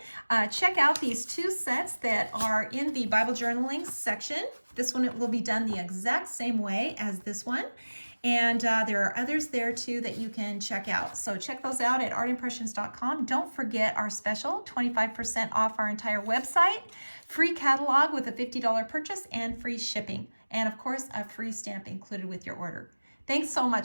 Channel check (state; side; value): inverted; both; correlation -1.00